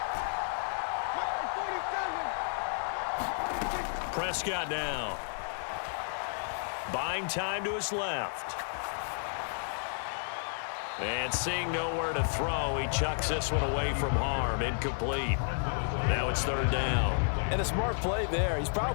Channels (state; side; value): silent; right; 56 dB below the other